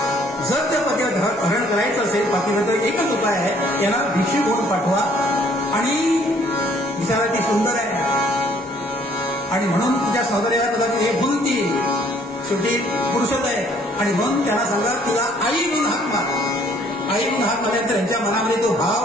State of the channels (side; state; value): both; normal; correlation 0.61